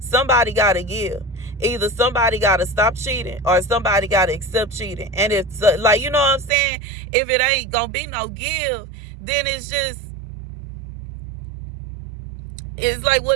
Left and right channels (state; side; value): drops out; left; at 6.5 s